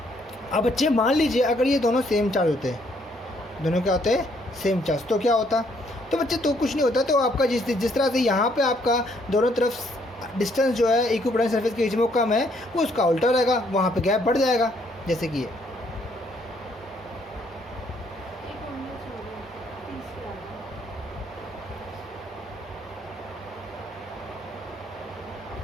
अब बच्चे मान लीजिए अगर ये दोनों सेम चार्ज होते हैं, दोनों क्या होते हैं, सेम चार्ज, तो क्या होता? तो बच्चे तो कुछ नहीं होता, तो आपका जिस तरह से यहाँ पे आपका दोनों तरफ डिस्टेंस जो है इक्विपोटेंशियल सरफेस के बीच में वो कम है, वो उसका उल्टा रहेगा, वहाँ पे गैप बढ़ जाएगा, जैसे कि ये।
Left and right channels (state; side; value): normal; both; correlation 0.68